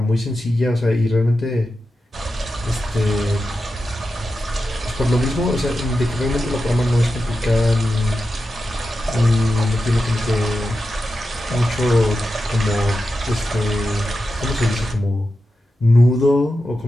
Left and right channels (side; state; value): both; normal; correlation 0.90